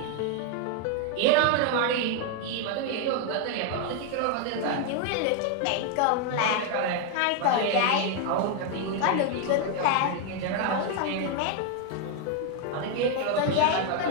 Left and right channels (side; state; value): both; different; correlation 0.01